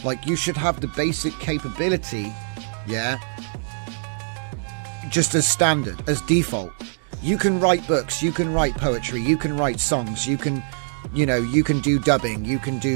Like, you should have the basic capability, yeah, just as standard, as default. You can write books, you can write poetry, you can write songs, you can, you can do dubbing, you can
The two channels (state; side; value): silent; left; digital silence